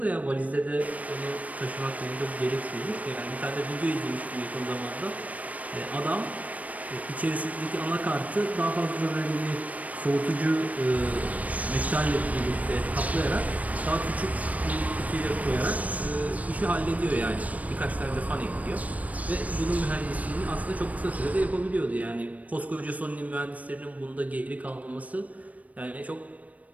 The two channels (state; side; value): late; left; 0.070 ms